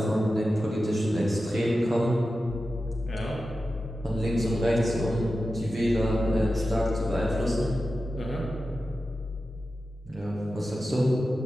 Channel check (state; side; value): normal; both; correlation 0.92